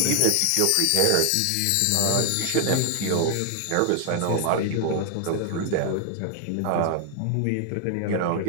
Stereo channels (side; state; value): both; different; correlation 0.00